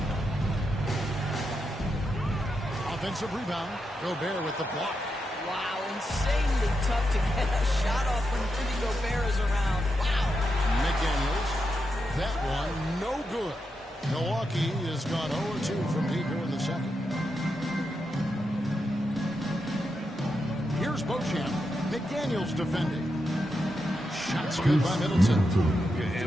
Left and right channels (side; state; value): both; normal; correlation 0.85